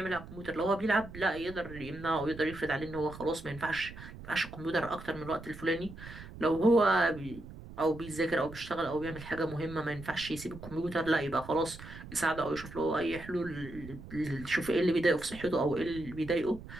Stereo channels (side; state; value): right; noise; rumble, 14 dB below the sound